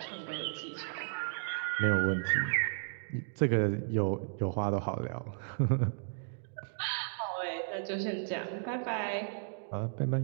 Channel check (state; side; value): silent; left; digital silence